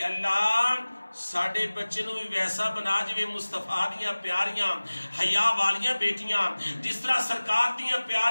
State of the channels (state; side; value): inverted; both; correlation -1.00